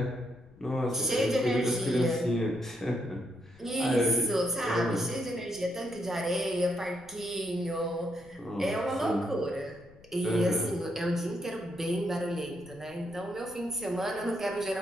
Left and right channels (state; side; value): noise; left; rumble, 25 dB below the sound